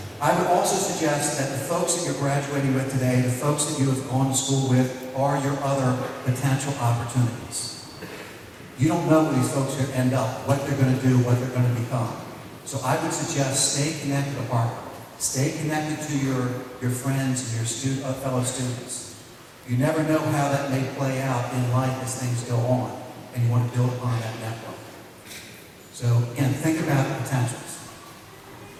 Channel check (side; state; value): both; identical; correlation 1.00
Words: I would also suggest that the folks that you're graduating with today, the folks that you have gone to school with, are your other potential opportunities. You don't know where these folks are going to end up, what they're going to do, what they're going to become. So I would suggest stay connected to Harcum. Stay connected to your friends and your fellow students. You never know how that may play out in life as things go on, and you want to build upon that network. So again, think about the potentials.